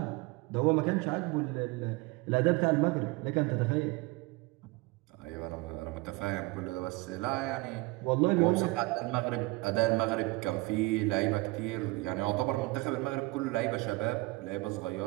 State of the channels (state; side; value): quieter; left; 23.0 dB